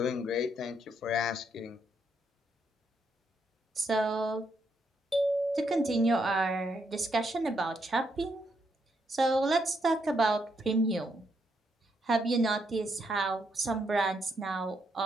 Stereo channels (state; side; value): normal; both; correlation 0.77